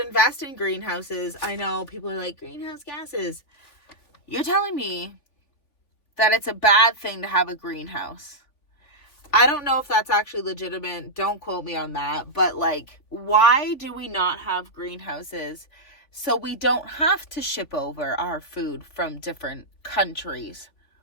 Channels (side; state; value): right; late; 3.5 ms